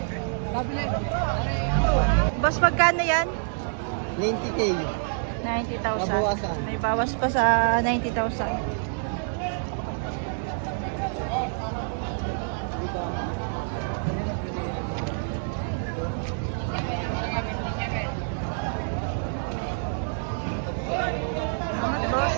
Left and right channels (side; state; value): left; silent; 60 dB below the other